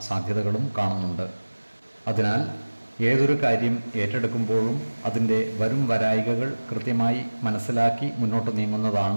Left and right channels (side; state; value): both; inverted; correlation -1.00